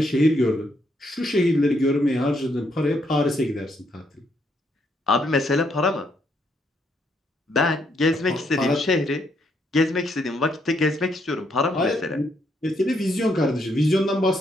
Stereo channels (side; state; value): both; normal; correlation 0.74